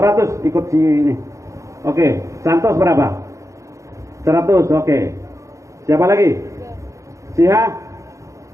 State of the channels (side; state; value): left; late; 0.15 ms